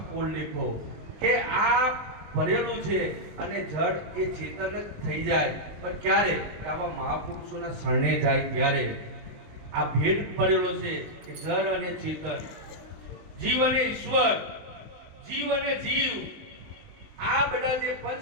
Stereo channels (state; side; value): late; left; 19 ms